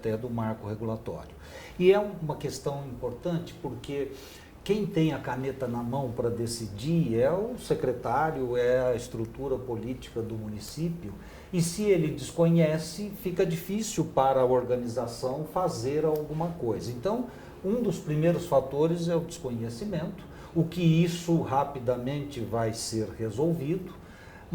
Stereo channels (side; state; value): both; identical; correlation 1.00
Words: do marco regulatório. E é uma questão importante porque quem tem a caneta na mão para decidir é o secretário, é a estrutura política do município, e se ele desconhece, fica difícil para a organização fazer alguma coisa. Então, um dos primeiros fatores é o desconhecimento, o que isso rapidamente vai ser resolvido,